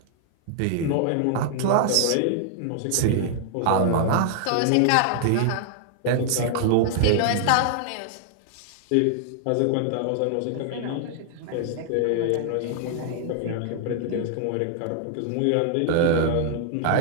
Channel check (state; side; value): different; both; correlation -0.01